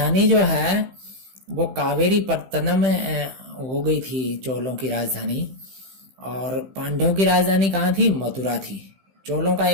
जो है वो कावेरी पत्तनम हो गई थी, चोलों की राजधानी। और पांड्यों की राजधानी कहाँ थी? मथुरा थी। चोलों का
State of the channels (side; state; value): left; late; 15 ms